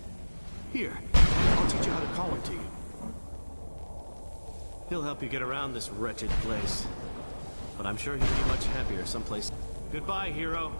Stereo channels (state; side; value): inverted; both; correlation -1.00